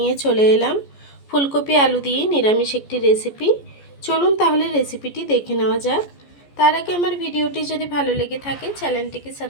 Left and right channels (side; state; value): right; late; 14 ms